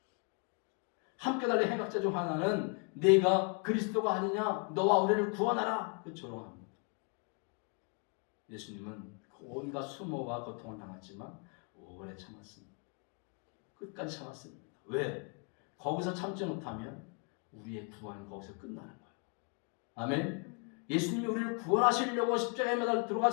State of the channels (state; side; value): quieter; right; 37.2 dB